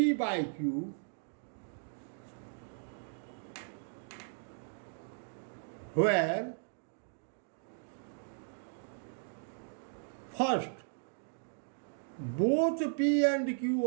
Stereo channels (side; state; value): left; silent; digital silence